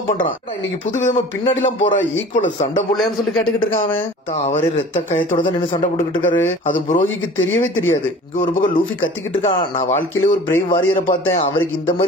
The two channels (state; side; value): normal; both; correlation 0.43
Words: பண்றான். இன்னைக்கு புது விதமா பின்னாடி எல்லாம் போற ஈக்குவல் சண்டை போடலன்னு சொல்லி கேட்டுக்கிட்டு இருக்கான். அவரே ரத்த கயத்தோட தான் நின்று சண்டை போட்டுக்கிட்டு இருக்காரு. அது புரோகிக்கு தெரியவே தெரியாது. இங்க ஒரு பக்கம் லூஃபி கத்திக்கிட்டு இருக்கான். நான் வாழ்க்கையில ஒரு பிரேவ் வாரியரை பார்த்தேன், அவருக்கு இந்த